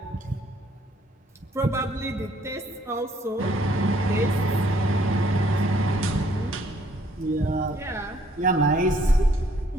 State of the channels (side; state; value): both; normal; correlation 0.64